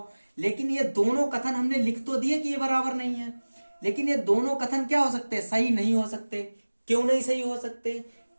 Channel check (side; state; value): both; inverted; correlation -1.00